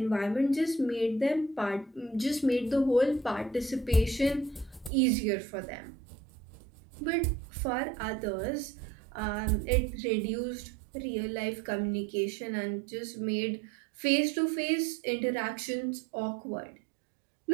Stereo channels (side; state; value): left; drops out; at 4.9 s